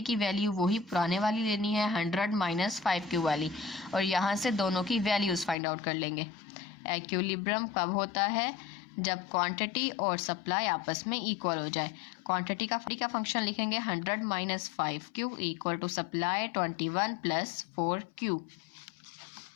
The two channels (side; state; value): right; drops out; at 5.6 s